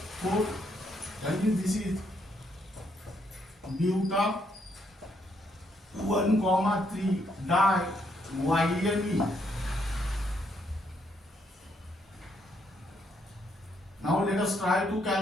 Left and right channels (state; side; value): normal; both; correlation 0.74